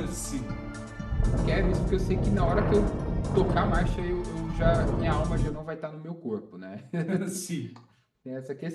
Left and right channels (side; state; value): both; identical; correlation 1.00